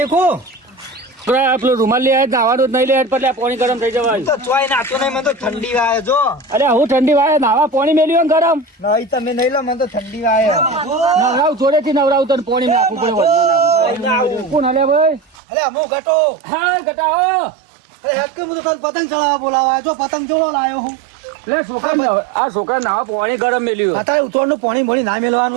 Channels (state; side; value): drops out; left; at 15.4 s